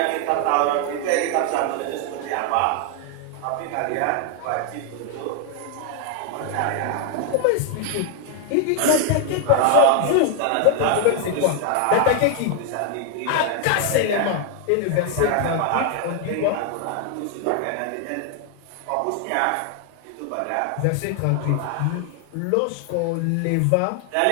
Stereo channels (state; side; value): different; both; correlation 0.00